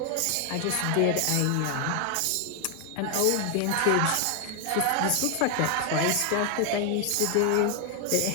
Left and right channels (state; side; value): different; both; correlation 0.00